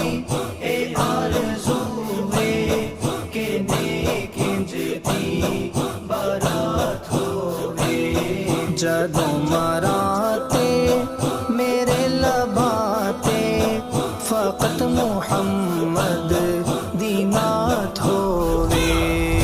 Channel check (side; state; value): both; identical; correlation 1.00